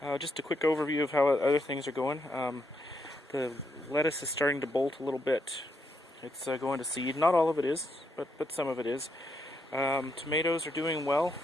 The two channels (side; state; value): both; normal; correlation 0.78